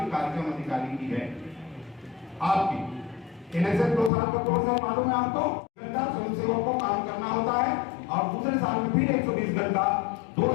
कार्यक्रम अधिकारी की है आपकी। इलेक्शन 2 साल का कोर्स है, मालूम है आपको, घंटा स्वयं सेवकों को काम करना होता है, और दूसरे साल में फिर 120 घंटा, 2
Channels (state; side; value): drops out; right; at 4.1 s